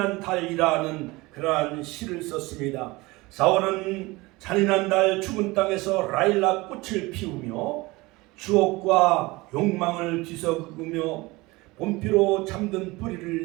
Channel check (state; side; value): quieter; left; 22.1 dB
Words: 달이라는 그러한 시를 썼습니다. 4월은 잔인한 달, 죽은 땅에서 라일락 꽃을 피우며 추억과 욕망을 뒤섞으며 봄비로 잠든